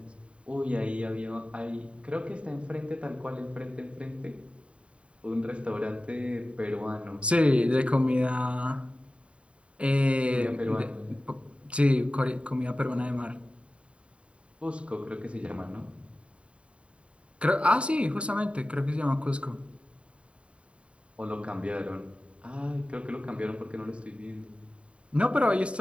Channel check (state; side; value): late; left; 0.060 ms